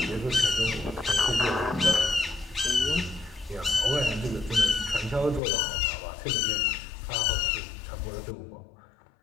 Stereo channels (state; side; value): drops out; right; at 5.4 s